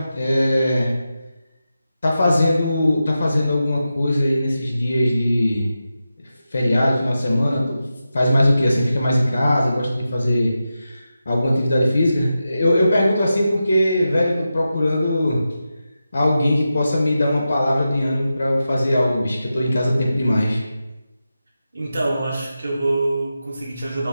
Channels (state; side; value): inverted; both; correlation -0.91